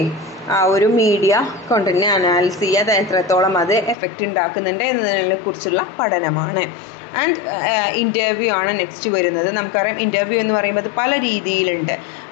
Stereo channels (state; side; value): drops out; right; at 4.0 s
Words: ആ ഒരു മീഡിയ കണ്ടൻറ്റിനെ അനാലിസ് ചെയ്യുക, അത് എത്രത്തോളം അത് എഫക്റ്റ് ഉണ്ടാക്കുന്നുണ്ട് എന്നതിനെ കുറിച്ചുള്ള പഠനമാണ്. ആൻഡ് ഇൻ്റർവ്യൂ ആണ് നെക്സ്റ്റ് വരുന്നത്. നമുക്കറിയാം ഇൻ്റർവ്യൂ എന്ന് പറയുമ്പോൾ അത് പല രീതിയിലുണ്ട്.